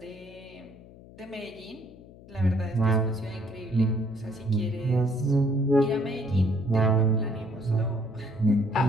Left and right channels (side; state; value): left; noise; hum, 21 dB below the sound